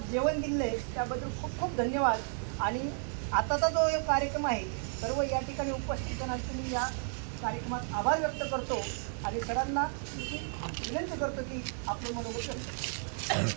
जेवण दिले त्याबद्दल खूप खूप धन्यवाद. आणि आताचा जो एक कार्यक्रम आहे सर्व या ठिकाणी उपस्थितांना मी या कार्यक्रमात आभार व्यक्त करतो आणि सरांना विनंती करतो की आपलं मनोगत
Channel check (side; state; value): left; silent; 56 dB below the other